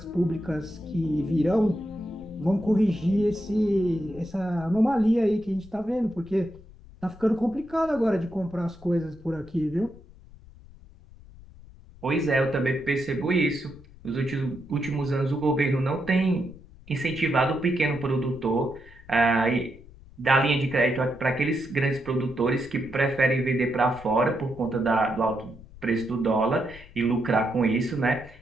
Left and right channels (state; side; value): noise; left; rumble, 21 dB below the sound